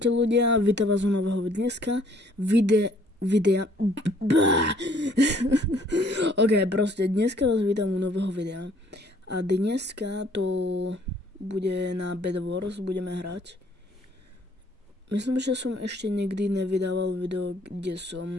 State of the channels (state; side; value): normal; both; correlation 0.61